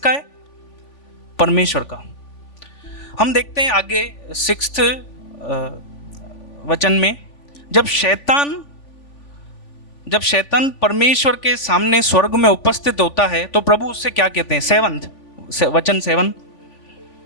है? परमेश्वर का। हम देखते हैं आगे 6th वचन में, जब शैतान परमेश्वर के सामने स्वर्ग में उपस्थित होता है तो प्रभु उससे क्या कहते हैं? 7 वचन 7,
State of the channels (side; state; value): right; late; 3.5 ms